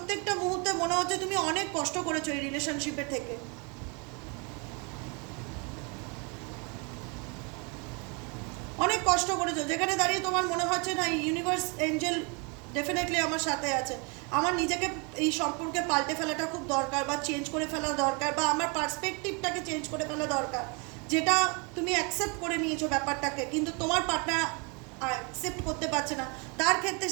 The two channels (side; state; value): left; quieter; 32.6 dB